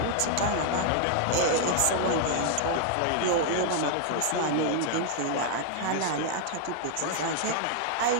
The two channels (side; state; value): both; different; correlation 0.00